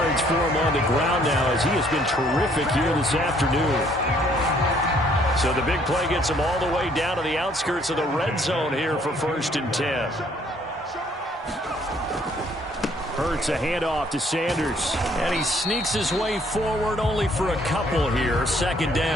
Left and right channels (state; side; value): normal; both; correlation 0.63